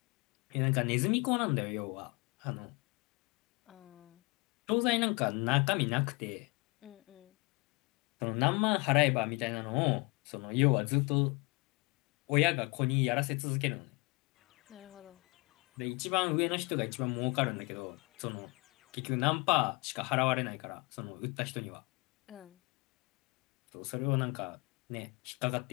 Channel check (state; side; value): quieter; right; 28.2 dB